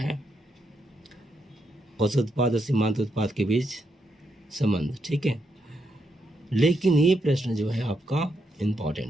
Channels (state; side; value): normal; both; correlation 0.80